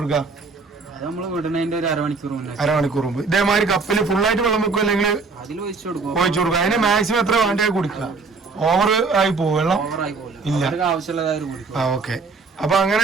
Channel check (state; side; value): quieter; left; 4.3 dB